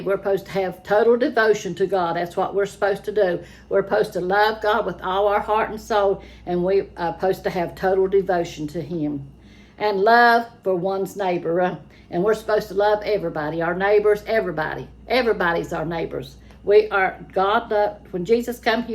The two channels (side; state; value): both; identical; correlation 1.00